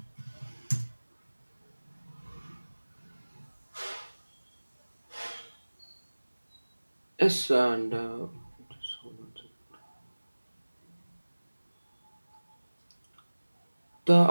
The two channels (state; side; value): inverted; both; correlation -1.00